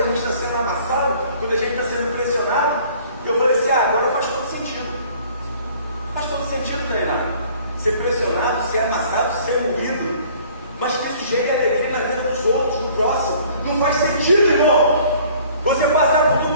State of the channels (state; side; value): inverted; both; correlation -0.54